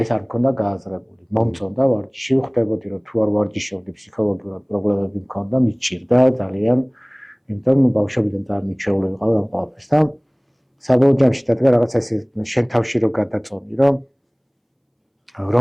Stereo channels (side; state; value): both; identical; correlation 1.00